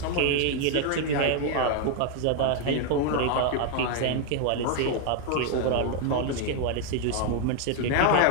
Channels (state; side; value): different; both; correlation 0.00